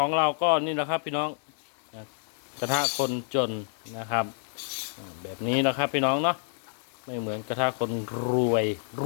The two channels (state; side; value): silent; right; digital silence